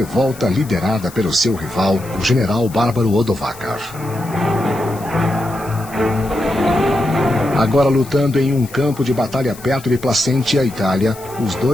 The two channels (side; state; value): left; noise; hiss, 19 dB below the sound